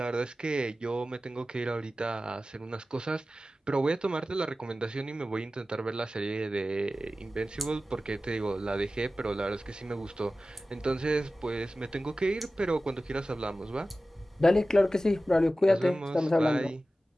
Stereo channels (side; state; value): both; normal; correlation 0.95